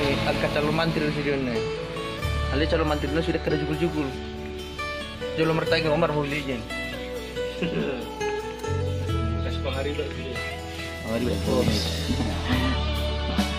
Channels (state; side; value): identical; both; correlation 1.00